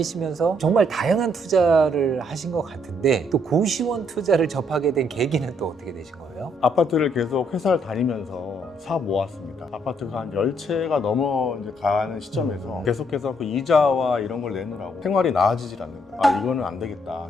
정말 다양한 투자를 하신 것 같은데 또 고시원 투자를 접하게 된 계기는 또 어떻게 되신 거예요? 아파트를 계속 회사를 다니면서 사 모았습니다. 아파트가 한 10채가 넘어 이제 가는 시점에서 계속해서 그 이자와 이런 걸 내느라고 생활이 나아지질 않는 거예요. 이거는 안 되겠다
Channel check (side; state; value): both; normal; correlation 0.71